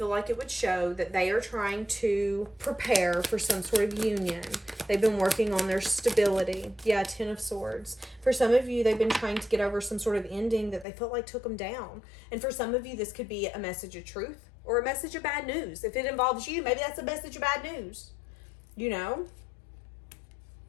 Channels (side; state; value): right; drops out; at 10.9 s